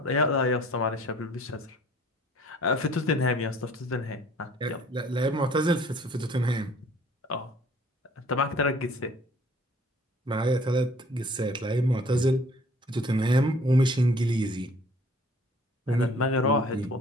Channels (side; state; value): both; normal; correlation 0.54